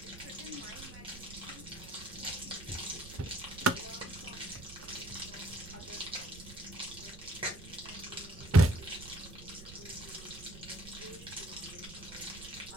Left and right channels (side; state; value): right; noise; rumble, 15 dB below the sound